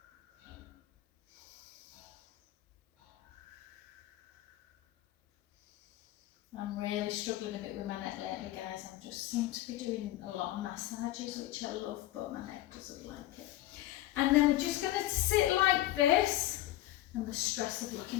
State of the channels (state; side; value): quieter; right; 15.1 dB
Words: I'm really struggling a bit with my neck lately, guys. I just seem to be doing a lot of massages, which I love, but my neck doesn't like it. And then we're just going to sit like this. And the stress of